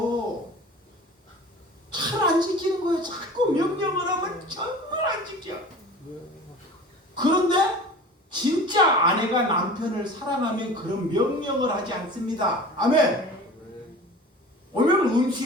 잘 안 지키는 거예요. 자꾸 명령을 하면 정말 안 지켜. 그런데 진짜 아내가 남편을 사랑하면 그런 명령을 하지 않습니다. 아멘. 오늘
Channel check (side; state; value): both; normal; correlation 0.39